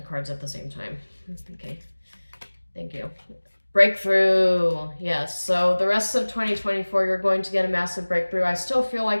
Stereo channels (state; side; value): inverted; both; correlation -1.00